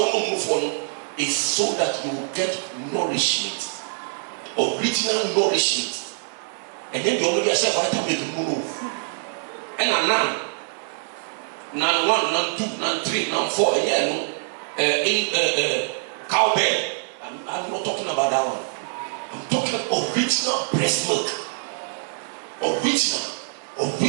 move on is so that you will get nourishment, original nourishment. And then you only get vitamin move. And now, now 1, now 2, now 3, now 4, cowbell. I'm not talking about that one. I'm talking original breast milk. Original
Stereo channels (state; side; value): silent; left; 62 dB below the other